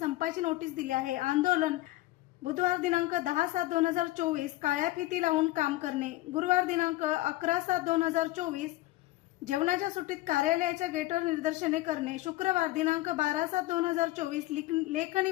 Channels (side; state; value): right; quieter; 17.7 dB